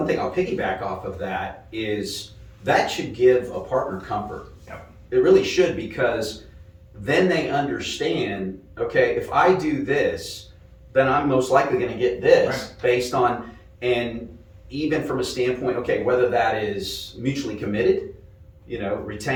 thing I'll piggyback off of that is that should give a partner comfort. Yep. It really should, because then they understand, okay, if I do this, then I'm most likely going to get this, right. Based on, and even from a standpoint, okay, whether that is mutually committed,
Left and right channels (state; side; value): identical; both; correlation 1.00